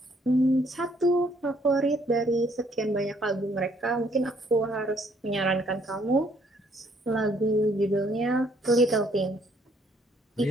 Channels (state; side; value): normal; both; correlation 0.66